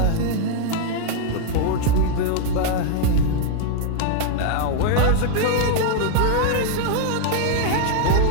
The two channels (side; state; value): both; different; correlation 0.00